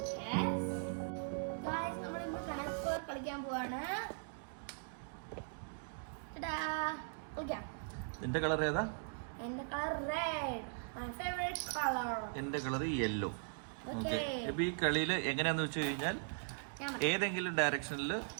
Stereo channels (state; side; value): silent; left; digital silence